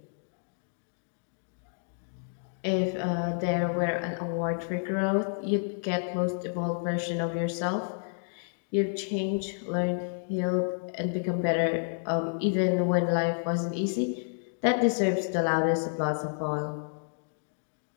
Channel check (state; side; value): silent; right; digital silence